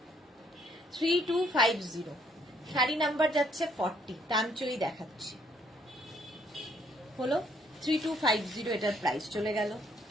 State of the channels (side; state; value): both; normal; correlation 0.67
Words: 3250, শাড়ি নাম্বার যাচ্ছে 40, টানচই দেখাচ্ছি। হলো 3250, এটার প্রাইস চলে গেল।